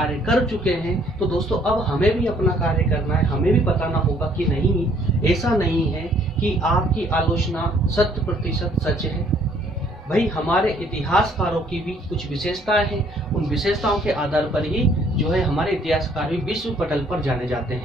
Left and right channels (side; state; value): both; normal; correlation 0.62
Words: कर चुके हैं, तो दोस्तों अब हमें भी अपना कार्य करना है। हमें भी बताना होगा कि नहीं, ऐसा नहीं है कि आपकी आलोचना 100% सच है। भाई हमारे इतिहासकारों की भी कुछ विशेषताएं हैं, उन विशेषताओं के आधार पर ही जो है हमारे इतिहासकार भी विश्व पटल पर जाने जाते